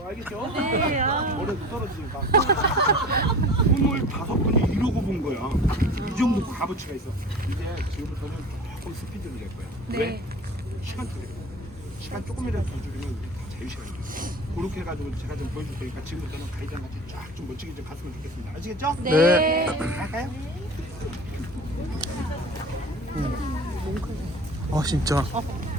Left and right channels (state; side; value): normal; both; correlation 0.38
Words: 알겠죠? 네. 아. 머리가 떨어지니까. 손을 5번이 이러고 본 거야. 이 정도 값어치가 있어. 이제 지금부터는 조금 스피드를 낼 거야. 네. 왜? 시간 줄여. 시간 조금이라도 더 줄이면 다 자유시간이야. 그렇게 해가지고 제가 좀 보여줄 테니까 지금부터는 가이드랑 같이 쫙 좀 멋지게 좀 갔으면 좋겠습니다. 아시겠죠? 네. 갈까요? 진짜.